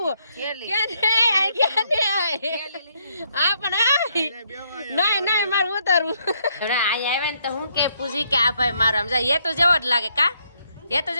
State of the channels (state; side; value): inverted; both; correlation -0.72